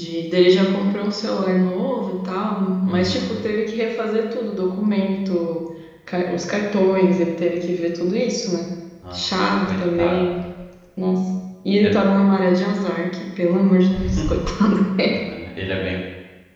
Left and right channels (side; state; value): both; identical; correlation 1.00